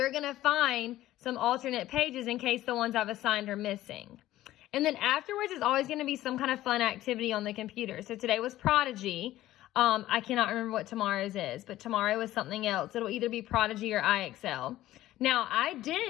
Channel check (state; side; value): quieter; right; 14.8 dB